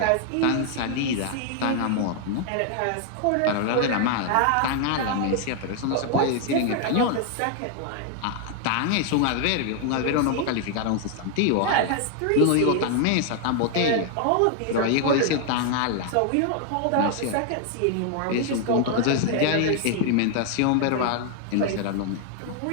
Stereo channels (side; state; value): both; different; correlation 0.00